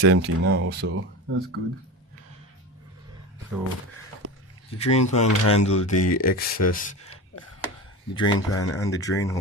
empty now, so that's good. So the drain pan handle the excess. The drain pan and the drain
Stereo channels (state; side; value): normal; both; correlation 0.28